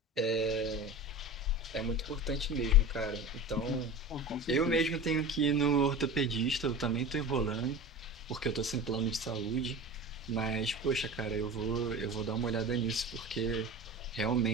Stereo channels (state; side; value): normal; both; correlation 0.32